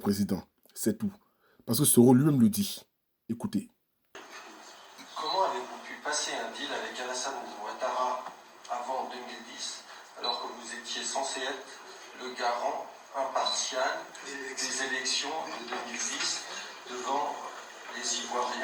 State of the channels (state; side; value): identical; both; correlation 1.00